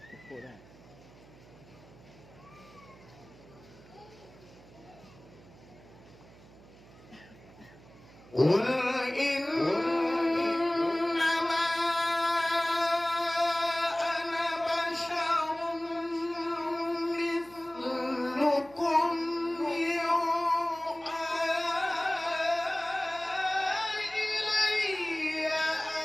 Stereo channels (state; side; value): noise; right; hum, 22 dB below the sound